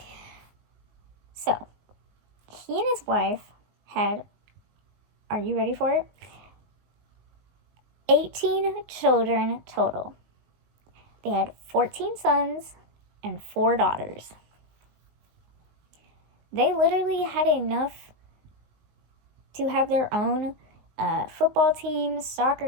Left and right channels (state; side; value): late; left; 19 ms